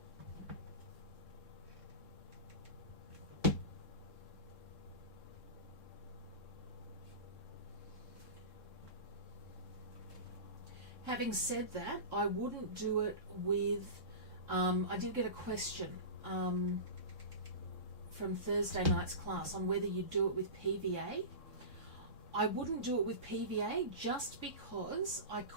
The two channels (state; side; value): late; right; 3.7 ms